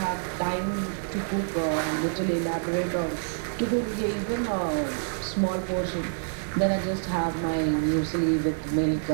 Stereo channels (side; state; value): left; silent; 60 dB below the other